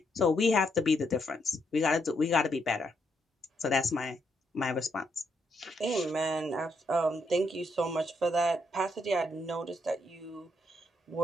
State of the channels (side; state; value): both; normal; correlation 0.76